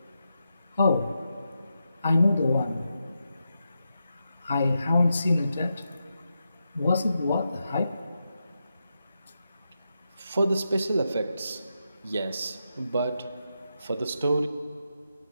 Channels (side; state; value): both; inverted; correlation -0.86